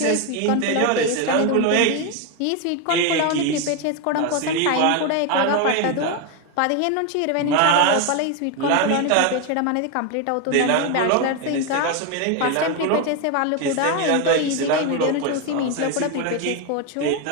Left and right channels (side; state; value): both; different; correlation 0.02